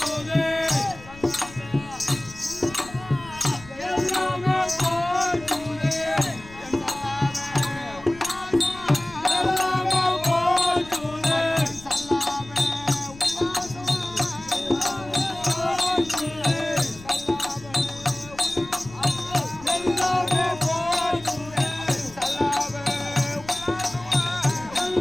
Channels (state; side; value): noise; left; rumble, 19 dB below the sound